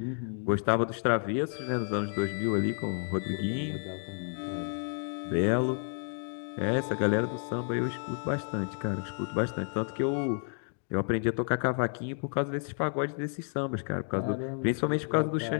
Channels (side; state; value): right; silent; 57 dB below the other